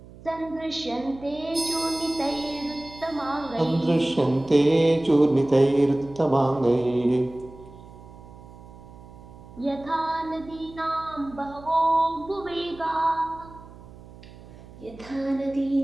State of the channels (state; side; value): noise; right; hum, 19 dB below the sound